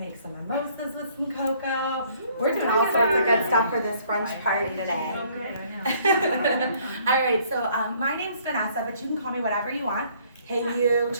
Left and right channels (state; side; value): inverted; both; correlation -0.61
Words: some mimosas with some cocoa. We're doing all sorts of good stuff for this brunch party today. All right, so my name's Vanessa, but you can call me whatever you want. Hey you,